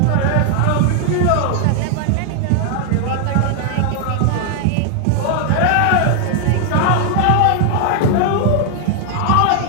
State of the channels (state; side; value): different; both; correlation 0.00